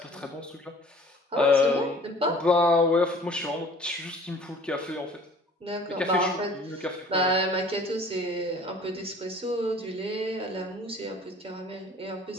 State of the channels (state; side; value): normal; both; correlation 0.49